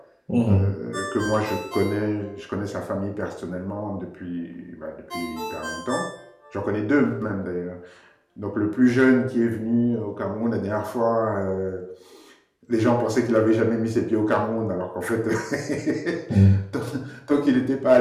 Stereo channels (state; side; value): identical; both; correlation 1.00